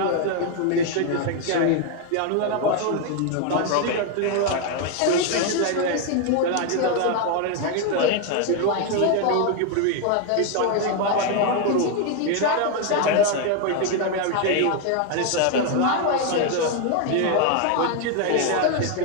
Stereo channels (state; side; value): different; both; correlation 0.01